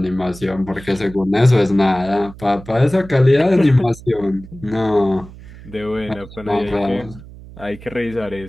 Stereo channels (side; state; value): right; noise; hum, 18 dB below the sound